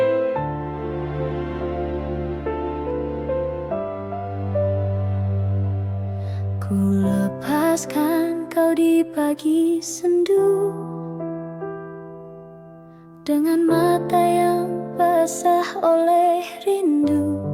Ku lepaskan kau di pagi sendu, dengan mata yang basah oleh rindu.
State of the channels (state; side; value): identical; both; correlation 1.00